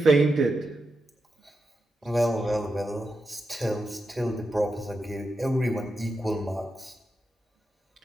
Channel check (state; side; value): normal; both; correlation 0.88